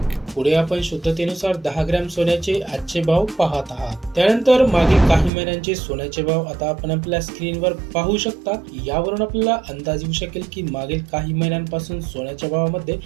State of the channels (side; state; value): left; drops out; at 5.3 s